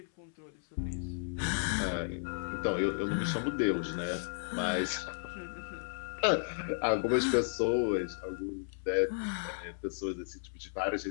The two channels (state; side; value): silent; right; 55 dB below the other